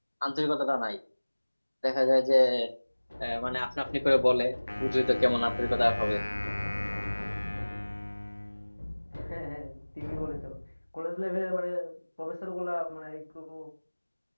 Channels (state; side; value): inverted; both; correlation -1.00